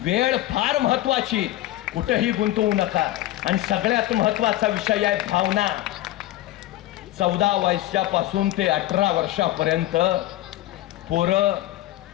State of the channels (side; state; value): right; quieter; 15.4 dB